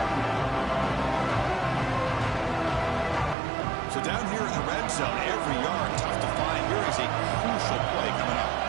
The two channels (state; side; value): drops out; left; at 3.4 s